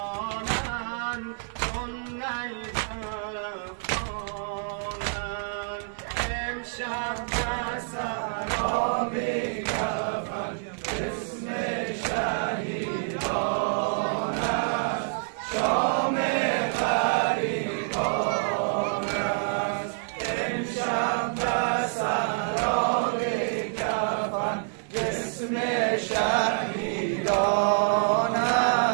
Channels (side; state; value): left; silent; digital silence